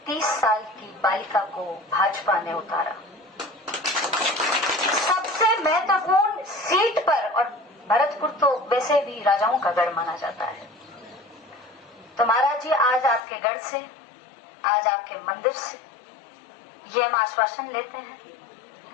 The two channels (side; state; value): right; drops out; at 13.2 s